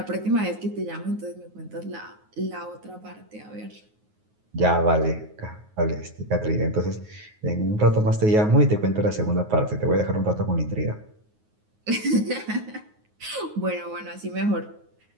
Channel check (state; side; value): late; left; 9.5 ms